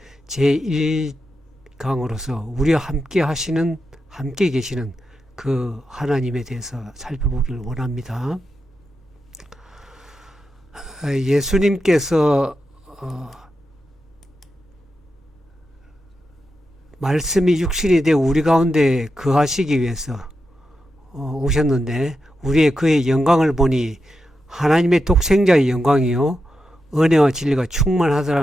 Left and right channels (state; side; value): normal; both; correlation 0.88